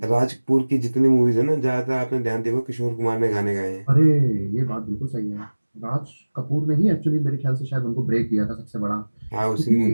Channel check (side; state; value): both; inverted; correlation -1.00